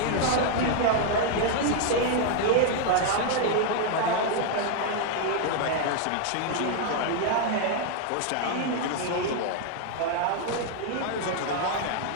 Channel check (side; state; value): both; different; correlation 0.00